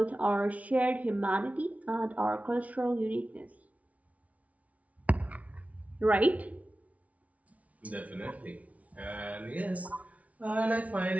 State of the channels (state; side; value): late; left; 0.068 ms